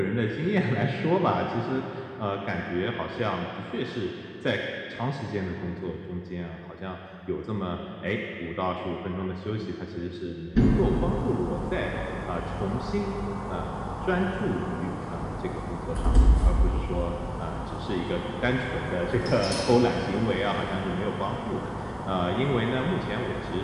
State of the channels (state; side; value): identical; both; correlation 1.00